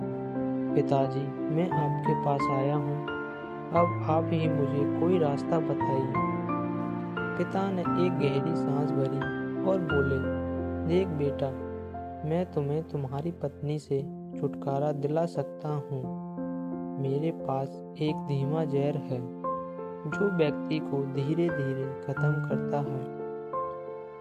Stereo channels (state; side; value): identical; both; correlation 1.00